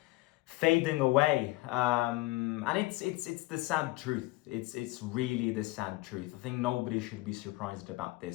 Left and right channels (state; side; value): quieter; right; 20.3 dB